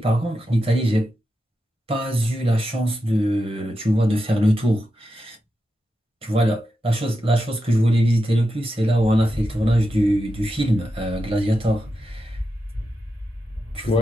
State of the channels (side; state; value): both; normal; correlation 0.88